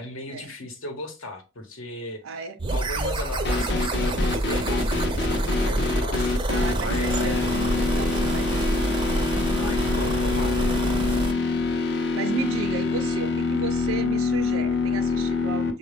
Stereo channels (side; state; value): both; normal; correlation 0.62